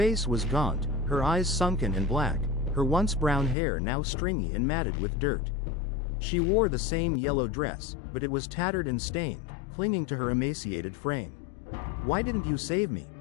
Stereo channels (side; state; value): right; drops out; at 3.6 s